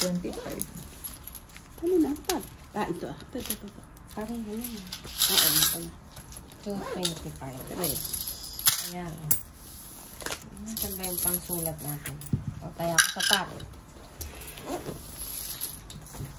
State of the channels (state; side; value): identical; both; correlation 1.00